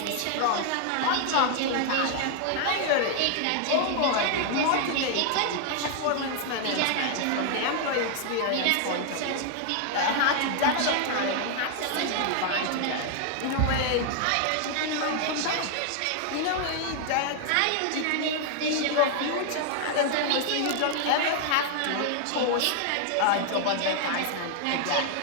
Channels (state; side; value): different; both; correlation 0.00